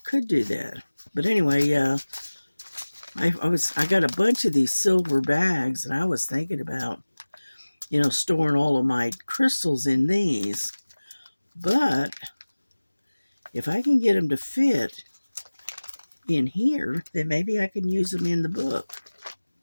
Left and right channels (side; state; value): both; inverted; correlation -1.00